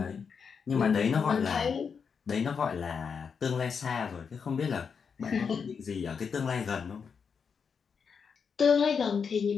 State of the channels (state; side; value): quieter; right; 6.2 dB